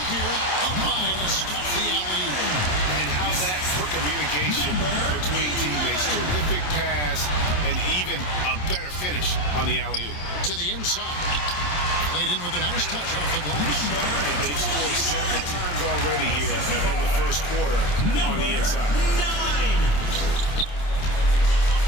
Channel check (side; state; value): right; late; 27 ms